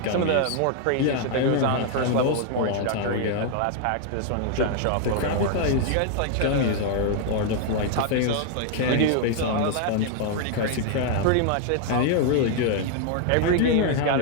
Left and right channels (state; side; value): different; both; correlation 0.00